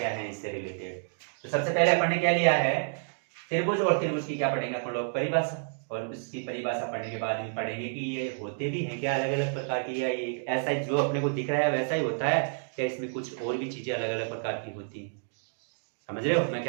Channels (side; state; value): left; silent; digital silence